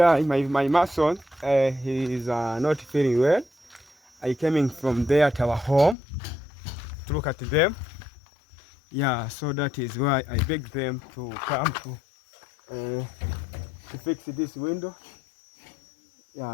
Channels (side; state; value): right; drops out; at 6.0 s